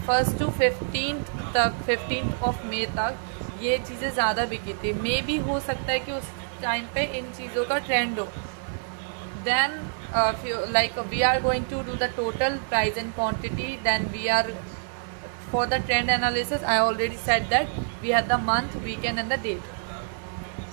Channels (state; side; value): silent; left; 60 dB below the other